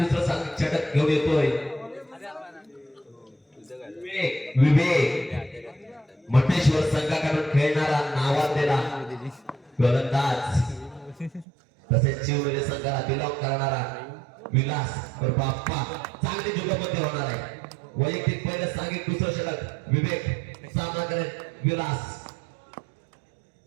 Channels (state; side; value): drops out; left; at 11.5 s